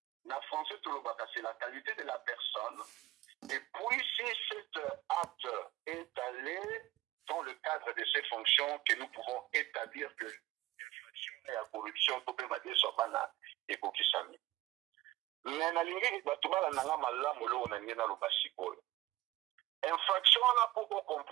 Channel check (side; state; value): left; quieter; 16.9 dB